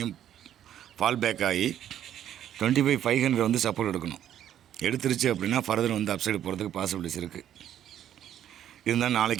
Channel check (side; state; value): left; quieter; 10.8 dB